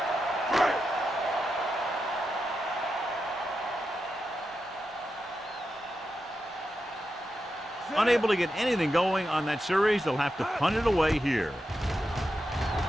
Unable to get anything going on that series, they'll have to punt it away here.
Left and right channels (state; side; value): normal; both; correlation 0.88